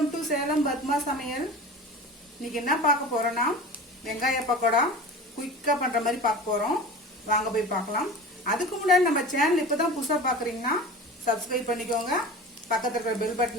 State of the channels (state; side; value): normal; both; correlation 0.35